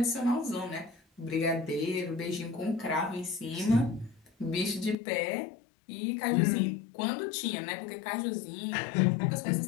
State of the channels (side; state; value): right; drops out; at 5.0 s